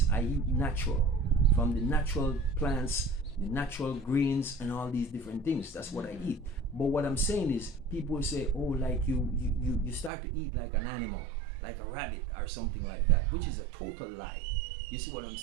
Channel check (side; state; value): left; drops out; at 10.1 s